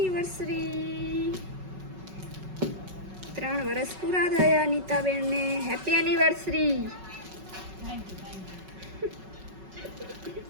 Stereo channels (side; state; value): left; late; 5.3 ms